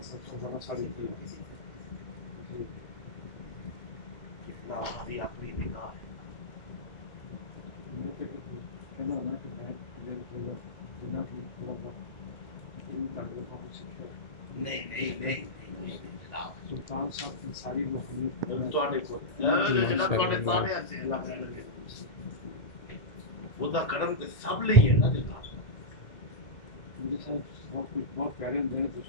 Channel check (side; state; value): right; late; 2.0 ms